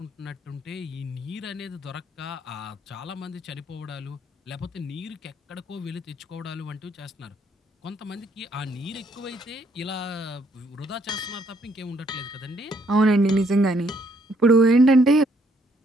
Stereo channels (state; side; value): normal; both; correlation 0.69